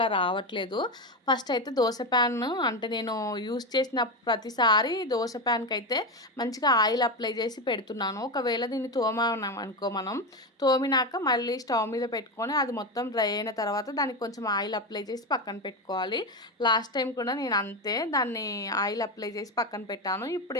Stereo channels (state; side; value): normal; both; correlation 0.15